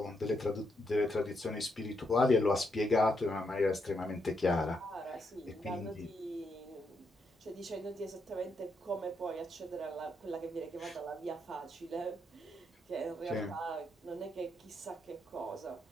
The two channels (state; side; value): normal; both; correlation 0.79